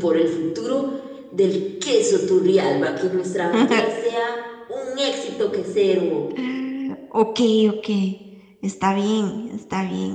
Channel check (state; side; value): identical; both; correlation 1.00